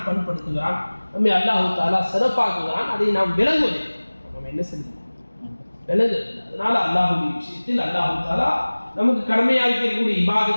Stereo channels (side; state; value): both; inverted; correlation -1.00